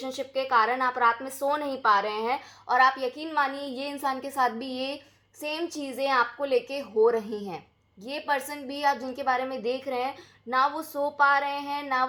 के कारण आप रात में सो नहीं पा रहे हैं, और आप यकीन मानिए ये इंसान के साथ भी ये सेम चीज़ें आपको लेके हो रही हैं। ये पर्सन भी, आप जिनके बारे में देख रहे हैं, ना वो सो पा रहे हैं, ना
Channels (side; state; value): both; identical; correlation 1.00